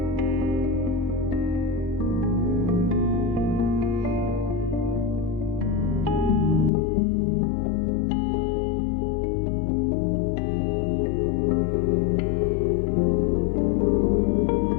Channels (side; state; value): right; drops out; at 6.7 s